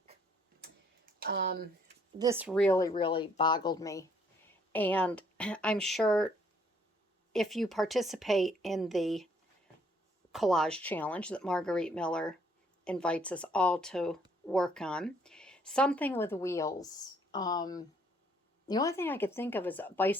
This really boggled me. And I'm sure if you participate in the collage challenge that Margarete Miller invites us all to work on, something with wheels. The only thing I could think of is a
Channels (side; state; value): both; normal; correlation 0.65